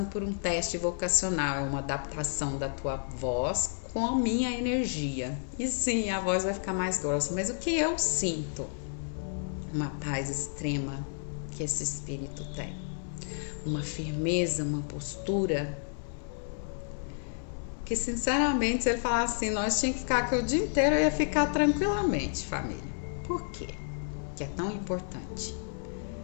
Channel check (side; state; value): right; silent; 57 dB below the other